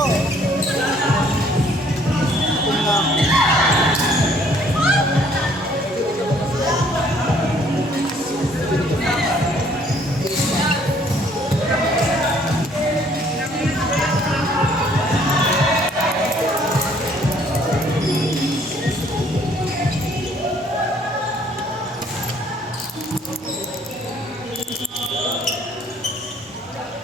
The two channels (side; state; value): both; normal; correlation 0.61